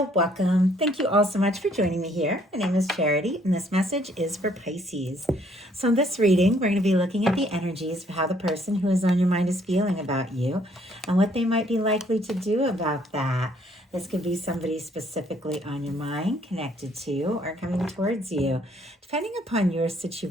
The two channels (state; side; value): normal; both; correlation 0.65